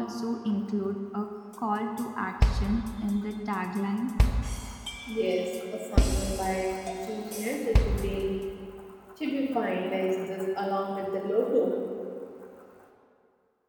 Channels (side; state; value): both; identical; correlation 1.00